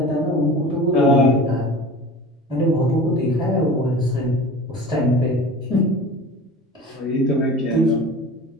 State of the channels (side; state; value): both; normal; correlation 0.38